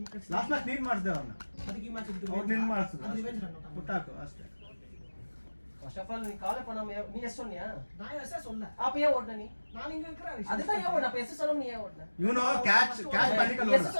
ಕಟ್ಸಿ ಲಾಸ್ಟ್ ಮ್ಯಾಚ್ ನೀನ್ ಮಾಡಿಸ್ದೆ ಅವ್ರನ್ನ, ಅದಕ್ಕೆ ಈ ಮ್ಯಾಚ್ ಅವ್ರು ನಿನ್ ಮಾಡಿಸಿದ್ರು. ರಿವೆಂಜ್ ರನ್ ಬಿಟ್ಟಾಕು ಅಷ್ಟೇ. ஃபர்ஸ்ட் ஆஃப் ஆல் நீ காலே பண்ணாம நீ எஸ் சொன்னியா? நான் எஸ் சொல்ல அப்ப ஏன் ஓடுன நீ? நான் இங்க இருக்கறேன். அதுதான் ஏன் ஓடுன? அப்ப எஸ் சொல்லாம நீ ஏன் ஓடுன? ಇವನು ಕ್ಯಾಚ್ பண்ணிக்கಲ್ಲ. எஸ்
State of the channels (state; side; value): inverted; both; correlation -1.00